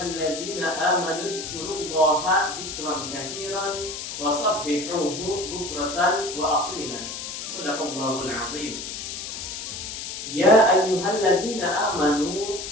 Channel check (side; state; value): left; noise; hiss, 7 dB below the sound